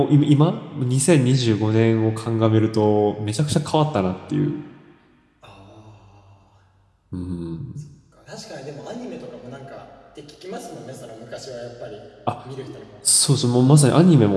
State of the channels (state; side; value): identical; both; correlation 1.00